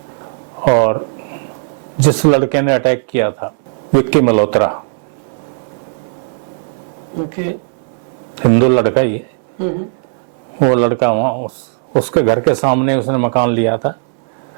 और जिस लड़के ने अटैक किया था, विक्की मल्होत्रा, ओके, हिंदू लड़का ही है, वो लड़का वहां उसके घर के सामने उसने मकान लिया था,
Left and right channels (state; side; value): silent; left; 64 dB below the other